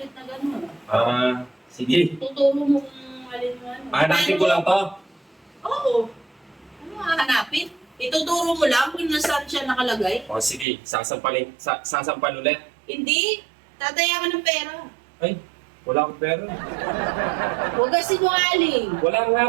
na gano'n. sige. Tuturo mo kung alin mo ano. Hanapin ko lang to. Oo. Ano hanapin? Ituturo mo lang kung nasaan siya nakalagay. Oh, sige. Sasampal ulit. Hindi. Tataya ka ng pera. Ay, wala akong pera. Huwag ka sinungaling. Wala nga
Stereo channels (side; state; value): left; drops out; at 10.7 s